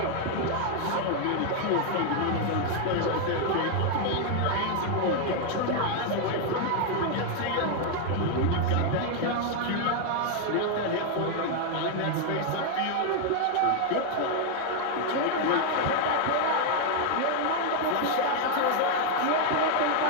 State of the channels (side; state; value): both; different; correlation 0.00